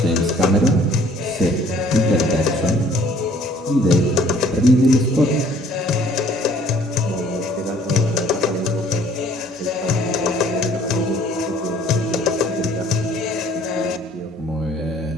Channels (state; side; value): normal; both; correlation 0.57